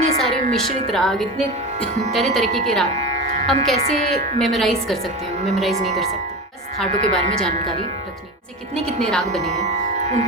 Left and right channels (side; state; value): both; normal; correlation 0.25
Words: सारे मिश्रित राग, इतने तरह तरीके के राग हम कैसे मेमोराइज़ कर सकते हैं? मेमोराइज़ नहीं कर सकते. बस थाटों के बारे में जानकारी रखनी है. कितने कितने राग बने हैं